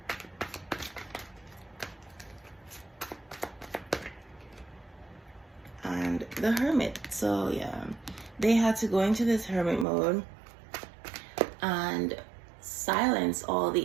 And the Hermit. So yeah, they had to go into this hermit mode and silence all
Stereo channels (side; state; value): left; drops out; at 9.9 s